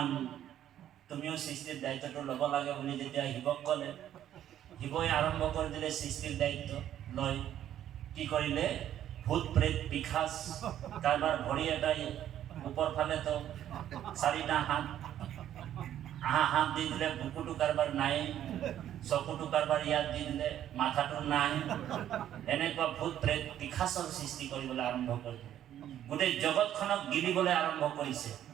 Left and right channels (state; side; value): quieter; left; 11.2 dB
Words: তুমিও সৃষ্টিৰ দায়িত্বটো ল'ব লাগে বুলি যেতিয়া শিৱক ক'লে, শিৱই আৰম্ভ কৰি দিলে সৃষ্টিৰ দায়িত্ব লৈ। কি কৰিলে? ভূত প্ৰেত পিশাচ, কাৰোবাৰ ভৰি এটাই ওপৰ ফালেতো 4টা হাত, হাত দি দিলে, বুকুটো কাৰোবাৰ নাই, চকুটো কাৰোবাৰ ইয়াত দি দিলে, মাথাটো নাই। এনেকুৱা ভূত প্ৰেত পিশাচৰ সৃষ্টি কৰিবলৈ আৰম্ভ কৰিলে, গোটেই জগতখনক গিলিবলৈ আৰম্ভ কৰিছে।